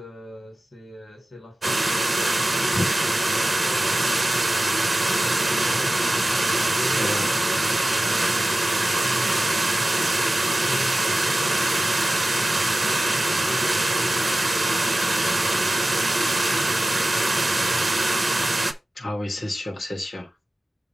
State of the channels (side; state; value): both; normal; correlation 0.96